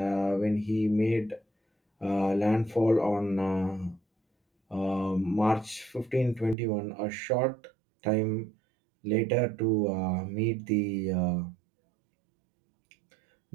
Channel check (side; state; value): left; drops out; at 6.6 s